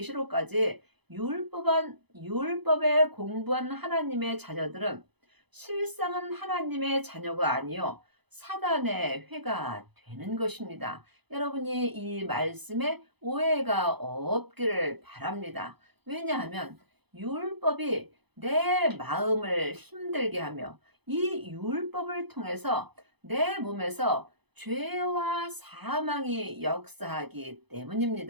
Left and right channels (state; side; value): late; left; 0.98 ms